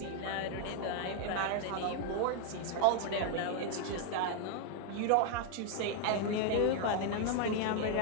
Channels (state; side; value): different; both; correlation 0.00